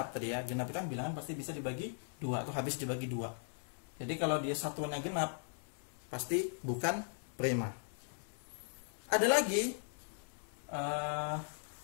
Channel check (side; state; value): right; silent; digital silence